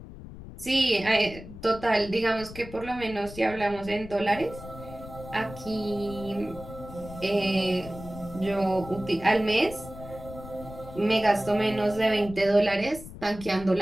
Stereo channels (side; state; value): left; noise; rumble, 14 dB below the sound